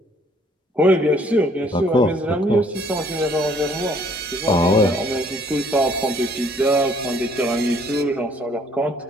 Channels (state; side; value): normal; both; correlation 0.62